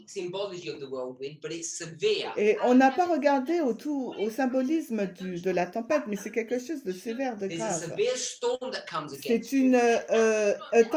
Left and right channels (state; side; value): identical; both; correlation 1.00